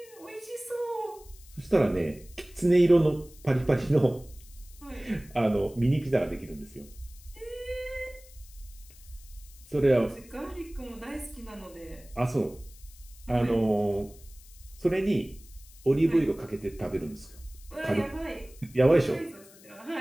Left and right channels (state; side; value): noise; left; hiss, 23 dB below the sound